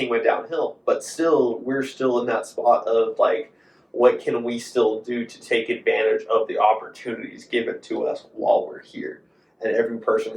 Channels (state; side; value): identical; both; correlation 1.00